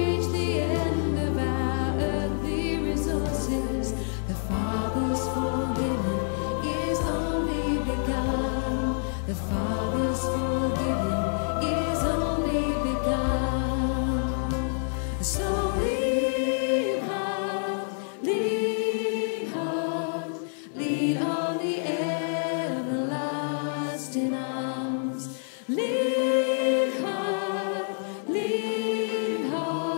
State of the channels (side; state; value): right; silent; 60 dB below the other